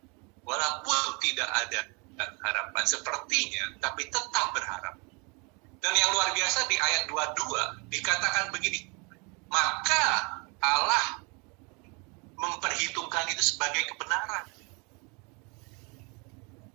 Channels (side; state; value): left; quieter; 31.2 dB